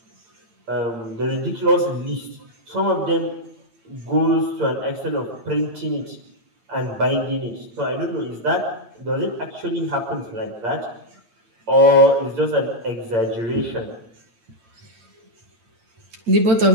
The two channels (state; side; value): late; left; 8.8 ms